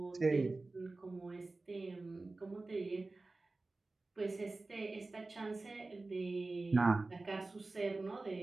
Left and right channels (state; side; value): quieter; left; 3.3 dB